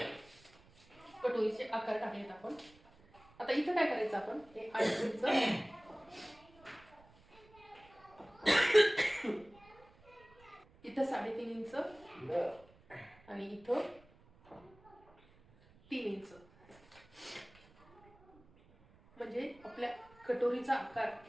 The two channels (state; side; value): noise; right; rumble, 27 dB below the sound